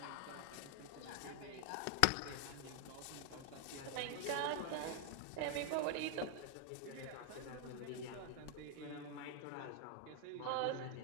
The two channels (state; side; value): different; both; correlation 0.01